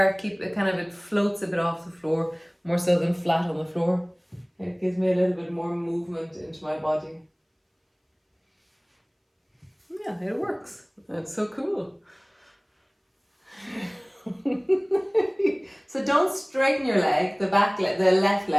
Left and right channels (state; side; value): identical; both; correlation 1.00